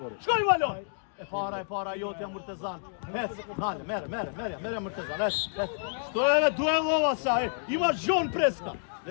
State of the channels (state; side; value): silent; right; digital silence